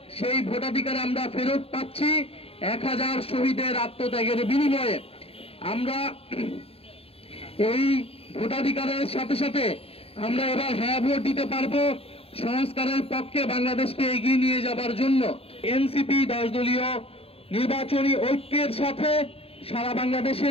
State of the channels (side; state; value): right; late; 0.28 ms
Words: সেই ভোটাধিকার আমরা ফেরত পাচ্ছি 1000 শহীদের আত্মত্যাগের বিনিময়ে। আমরা এই ভোটাধিকারের সাথে সাথে আমরা এবার হ্যাঁ ভোট দিতে পারবো সংস্কারের পক্ষে বাংলাদেশকে এগিয়ে নিয়ে যাবার জন্য। এনসিপি 10 দলীয় নির্বাচনী ঐক্যের সাথে সারা বাংলাদেশে